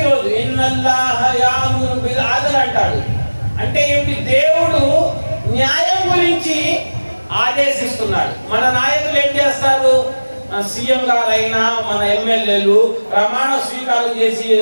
ఇన్నల్లాహ యఅమురు బిల్ అద్ల్ అంటాడు. అంటే ఏమిటి? దేవుడు న్యాయం గురించి ఆదేశిస్తున్నాడు. మన నాయకులు ఏం చేస్తారు? సీఎం గారైనా మన ఎమ్మెల్యేలు ప్రమాణ స్వీకారం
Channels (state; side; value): inverted; both; correlation -1.00